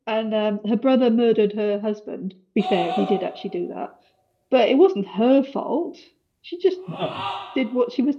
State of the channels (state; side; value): identical; both; correlation 1.00